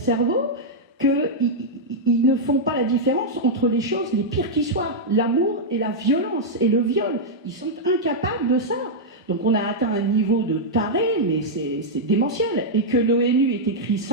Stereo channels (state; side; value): normal; both; correlation -0.06